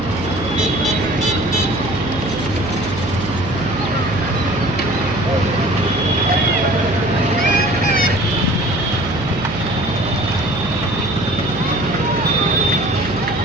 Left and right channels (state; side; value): noise; right; hum, 9 dB below the sound